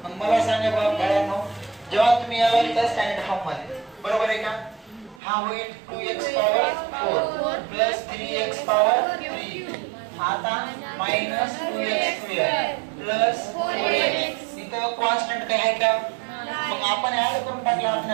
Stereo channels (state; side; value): drops out; left; at 5.2 s